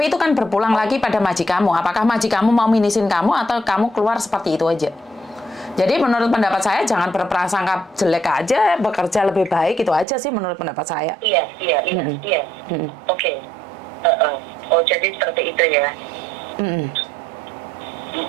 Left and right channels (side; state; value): left; drops out; at 10.1 s